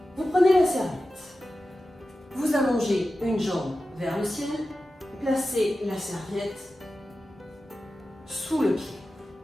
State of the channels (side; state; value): both; normal; correlation 0.93